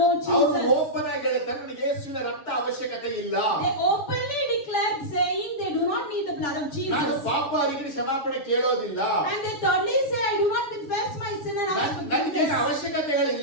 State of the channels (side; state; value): right; late; 6.9 ms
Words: ಅವರು Jesus. ಓಪನ್ ಆಗಿ ಹೇಳ್ತಾರೆ, ನನಗೆ ಯೇಸುವಿನ ರಕ್ತ ಅವಶ್ಯಕತೆ ಇಲ್ಲ. They openly declared saying they do not need the blood of ನಾನು Jesus. ಪಾಪ ಅವರಿಗೆ ಕ್ಷಮಾಪಣೆ ಕೇಳೋದಿಲ್ಲ. And they thirdly say, I do not confess my sin and ask ನನಗೆ forgiveness.